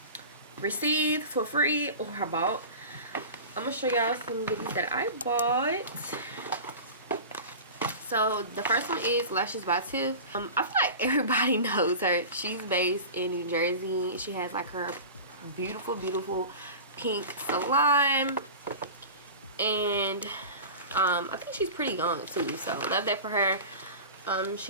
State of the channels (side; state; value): both; inverted; correlation -0.33